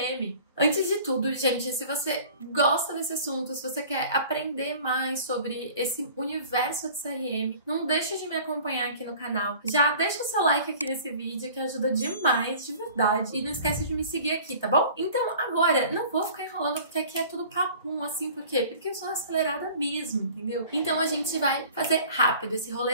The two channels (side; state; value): both; inverted; correlation -0.46